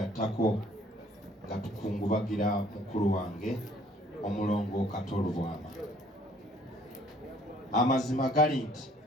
nga tukungubagira mukulu wange omulongo Katolubwama. Amazima gali nti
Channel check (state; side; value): normal; both; correlation 0.59